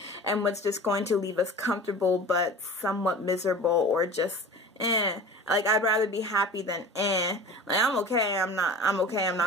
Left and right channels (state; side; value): normal; both; correlation 0.37